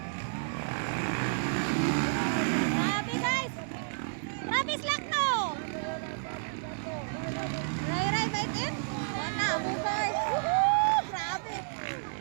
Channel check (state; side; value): silent; left; 57 dB below the other